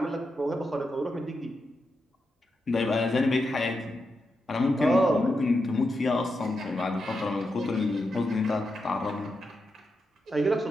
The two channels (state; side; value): normal; both; correlation 0.86